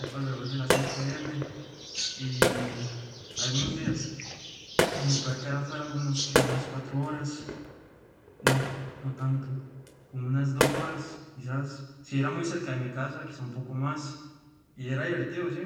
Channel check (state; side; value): identical; both; correlation 1.00